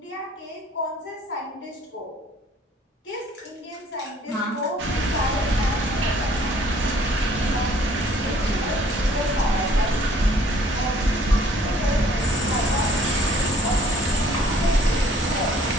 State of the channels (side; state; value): both; normal; correlation 0.58